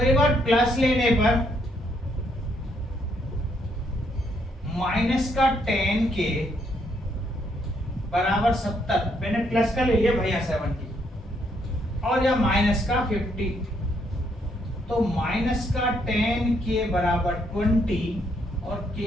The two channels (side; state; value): both; normal; correlation 0.73